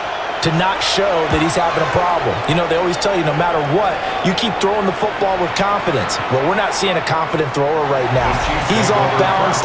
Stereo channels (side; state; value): both; identical; correlation 1.00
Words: to not show that he's having a problem. You know, they always tell you no matter what, you keep throwing the football with confidence. Well, we're not seeing a confident thrower right now. He's off balance,